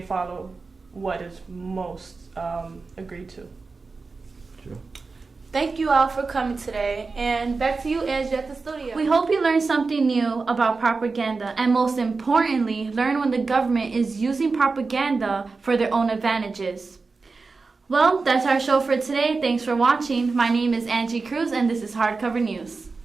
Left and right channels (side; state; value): left; quieter; 4.2 dB